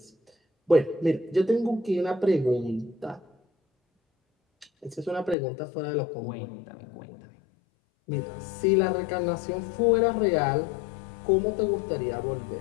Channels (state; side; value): drops out; right; at 5.4 s